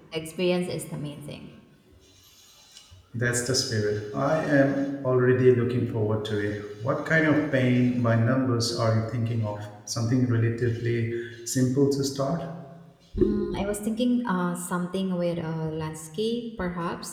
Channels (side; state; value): both; identical; correlation 1.00